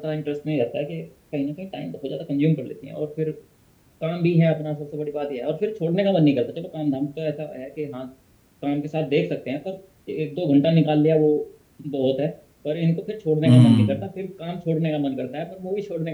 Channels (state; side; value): identical; both; correlation 1.00